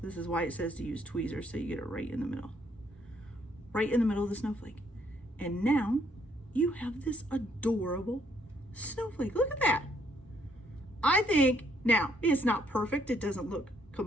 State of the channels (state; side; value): normal; both; correlation 0.69